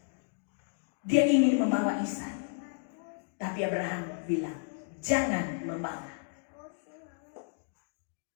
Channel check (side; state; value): right; silent; digital silence